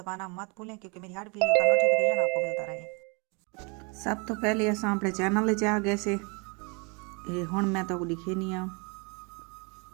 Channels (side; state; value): left; quieter; 31.7 dB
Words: मत भूलें क्योंकि मेरी हर वीडियो का नोटिफिकेशन आपको मिलता रहे। सब तो पहले असां अपने चैनल च आ गए से हुण मैं तो दिखे नहीं आ।